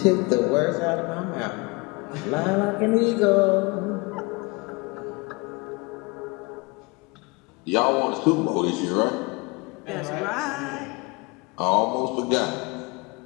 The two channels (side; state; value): right; quieter; 27.2 dB